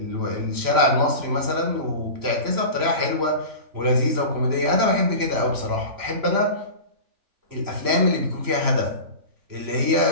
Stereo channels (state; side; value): late; left; 3.0 ms